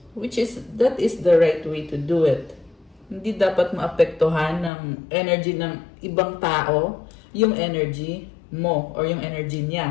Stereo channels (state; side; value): drops out; right; at 4.7 s